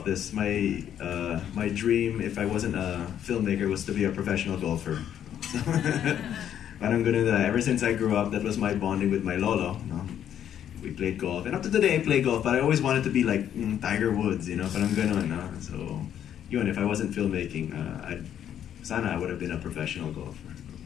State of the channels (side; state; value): right; quieter; 9.9 dB